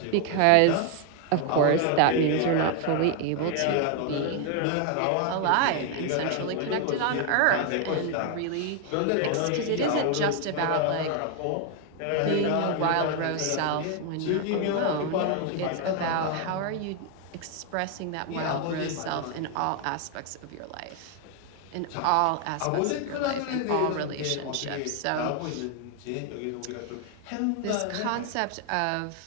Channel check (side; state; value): both; different; correlation 0.01